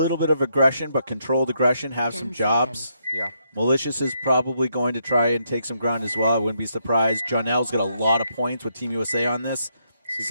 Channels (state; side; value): inverted; both; correlation -0.77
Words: bit of aggression, but controlled aggression, have 10 some jobs. seconds. Yeah. Malicious is probably going to try and take some ground as well. I wouldn't be surprised. Jonell's got a lot of points with Team USA on this.